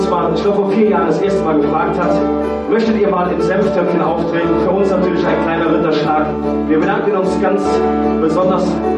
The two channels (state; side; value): identical; both; correlation 1.00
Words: mal, ich glaube vor 4 Jahren das erste Mal gefragt hat, möchtet ihr mal im Senftöpfchen auftreten? Für uns natürlich ein kleiner Ritterschlag. Wir bedanken uns ganz besonders